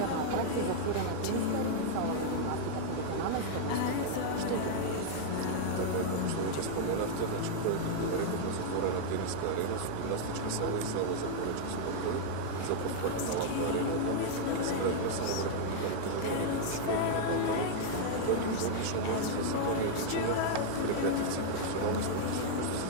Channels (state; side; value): different; both; correlation -0.01